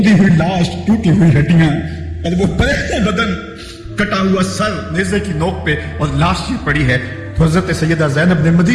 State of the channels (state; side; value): identical; both; correlation 1.00